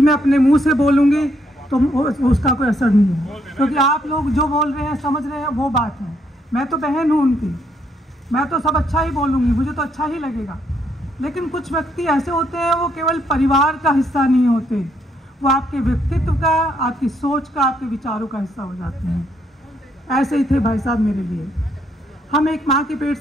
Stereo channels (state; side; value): normal; both; correlation 0.73